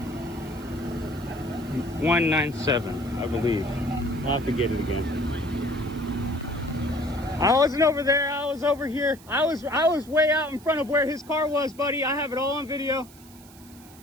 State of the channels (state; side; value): noise; right; hiss, 23 dB below the sound